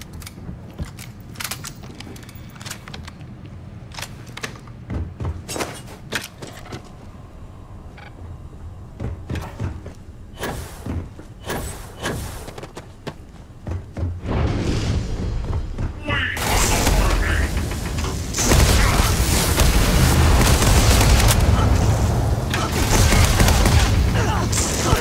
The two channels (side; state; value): both; identical; correlation 1.00